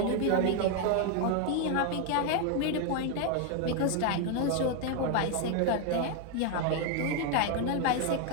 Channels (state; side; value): different; both; correlation 0.01